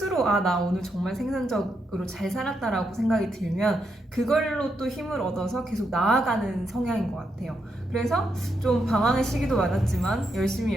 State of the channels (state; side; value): normal; both; correlation 0.81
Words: 나 오늘 정말 생산적으로 잘 살았다라고 생각이 들면 그걸로 또 힘을 얻어서 계속 나아가는 성향인 것 같아요. 그래서 좀 방황의 시기도 많았지만